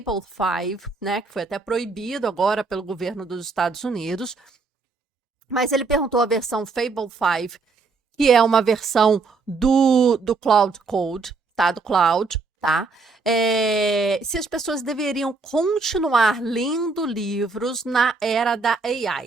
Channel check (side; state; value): left; quieter; 4.2 dB